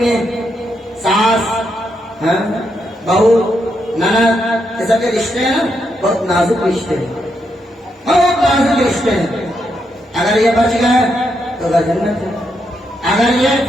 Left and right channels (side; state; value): both; normal; correlation 0.80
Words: میں ساس بہو نند، یہ سب کے رشتے ہیں بہت نازک رشتے ہیں، بہت نازک رشتے ہیں۔ اگر یہ بچ گئے تو گھر جنت ہے، اگر یہ